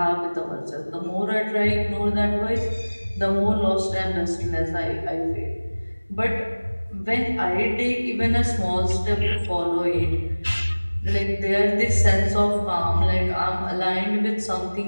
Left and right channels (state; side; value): inverted; both; correlation -1.00